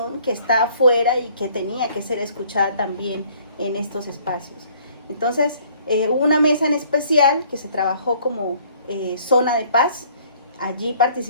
que está afuera y que tenía que ser escuchada también en estos espacios. Entonces, hubo una mesa en especial que se trabajó como zona de paz. Allí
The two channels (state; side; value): inverted; both; correlation -0.58